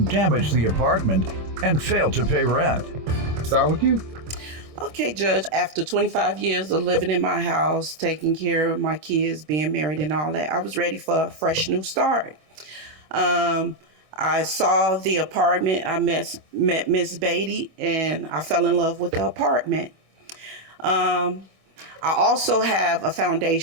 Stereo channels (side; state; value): left; late; 26 ms